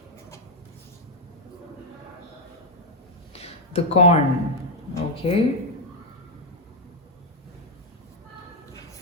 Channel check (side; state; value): both; normal; correlation 0.02